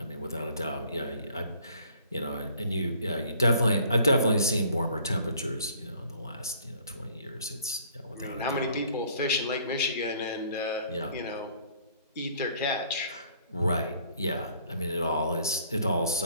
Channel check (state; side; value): inverted; both; correlation -0.58